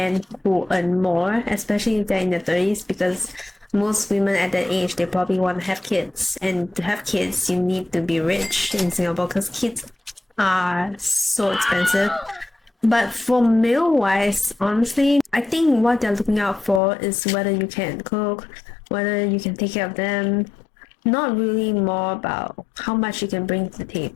who earn more, especially if they're in their 30s, because most women at that age, they probably want to have kids. And to have kids, you need to be rich in Singapore because kids are so expensive. But for male-wise, honestly, I think what they're looking out for is whether you can cook, whether you can take care of them, not really more about how much you can bring to the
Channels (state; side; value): drops out; right; at 16.8 s